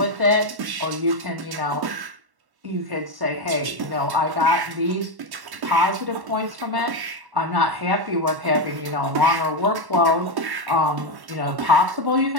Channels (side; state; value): left; late; 1.1 ms